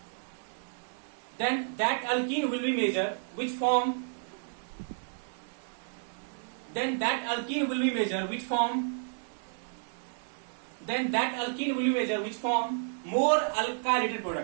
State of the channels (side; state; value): left; silent; digital silence